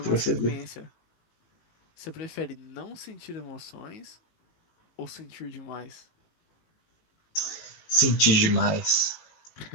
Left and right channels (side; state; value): right; late; 19 ms